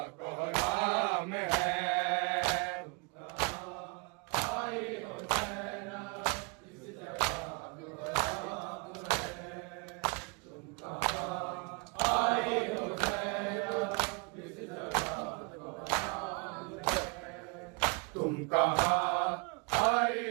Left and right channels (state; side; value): quieter; left; 32.9 dB